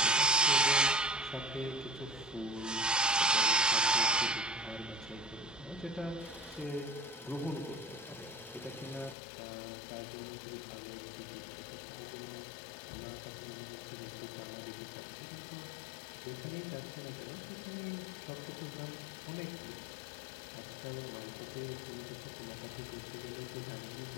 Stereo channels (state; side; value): drops out; right; at 9.2 s